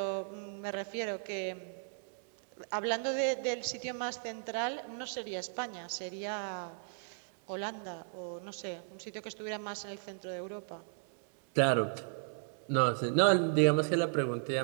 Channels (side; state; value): left; silent; 54 dB below the other